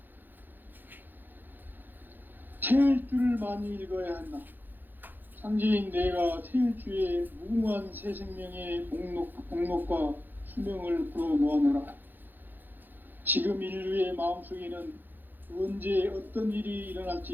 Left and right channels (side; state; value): left; late; 0.090 ms